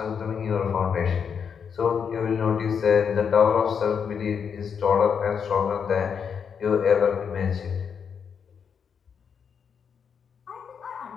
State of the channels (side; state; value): right; quieter; 6.9 dB